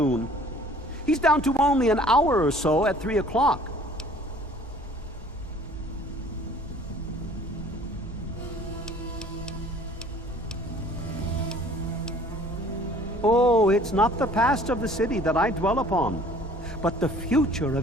He's down to only an hour or so at 3 o'clock. Oh, it's not the past of the city that I dwell upon, but the future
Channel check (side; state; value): both; normal; correlation 0.52